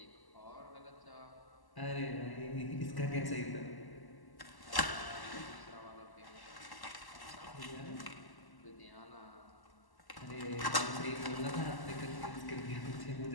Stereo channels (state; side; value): late; right; 1.1 ms